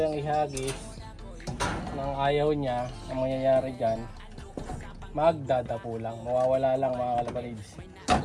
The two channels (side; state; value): both; identical; correlation 1.00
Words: yung ihagis nang ayaw niya, ang mangyayari dyan, magdadapo lang, mawawala lang mga kalapatids.